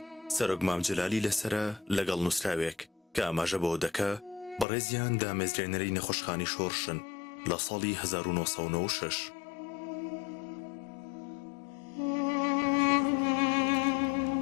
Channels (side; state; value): right; drops out; at 4.7 s